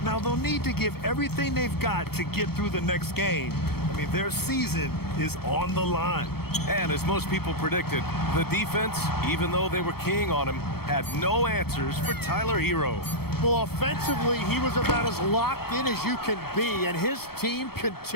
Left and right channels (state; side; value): late; right; 0.95 ms